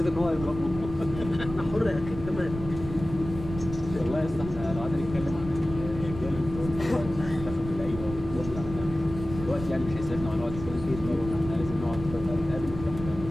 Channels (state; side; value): noise; right; rumble, 10 dB below the sound